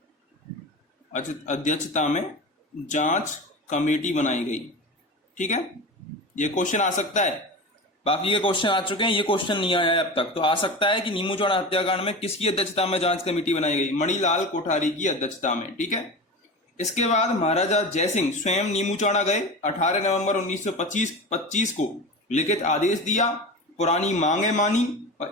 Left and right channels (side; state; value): both; normal; correlation 0.28